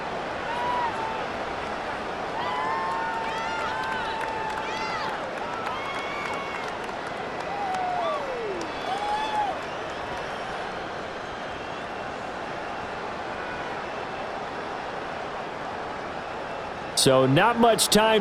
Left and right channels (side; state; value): both; identical; correlation 1.00